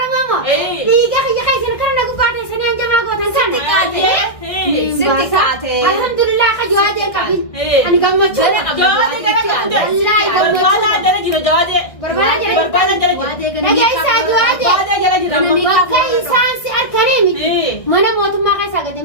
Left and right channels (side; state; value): right; late; 1.6 ms